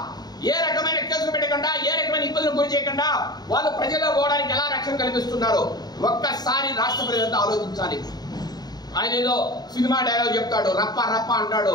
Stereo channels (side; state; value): right; late; 0.19 ms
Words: ఏ రకమైన కేసులు పెట్టకుండా ఏ రకమైన ఇబ్బందులు గురి చేయకుండా వాళ్ళు ప్రజల్లో పోవడానికి ఎలా రక్షణ కల్పిస్తున్నారో ఒక్కసారి రాష్ట్ర ప్రజలంతా ఆలోచించాలి. ఆయన ఏదో సినిమా డైలాగ్ చెప్తాడు, రప్ప రప్ప అంటాడు,